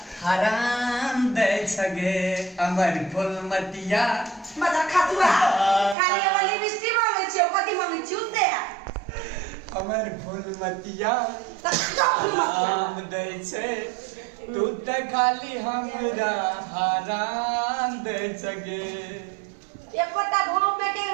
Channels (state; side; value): drops out; left; at 6.0 s